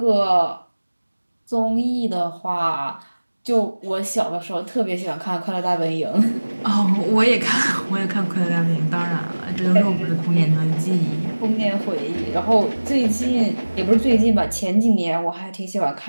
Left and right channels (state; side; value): inverted; both; correlation -1.00